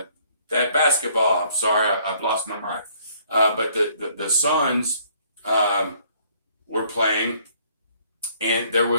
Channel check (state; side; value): inverted; both; correlation -0.62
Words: basketball, I'm sorry, I've lost my mind. But the Suns were playing, and there